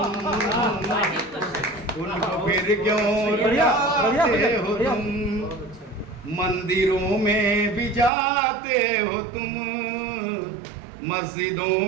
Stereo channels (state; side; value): drops out; left; at 8.1 s